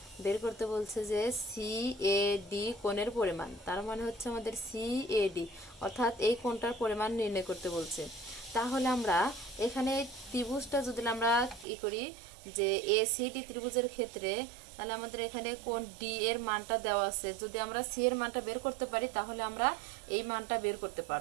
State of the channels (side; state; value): left; drops out; at 11.7 s